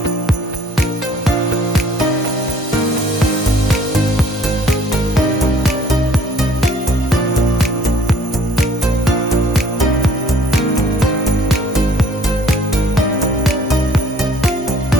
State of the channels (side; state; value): both; normal; correlation 0.57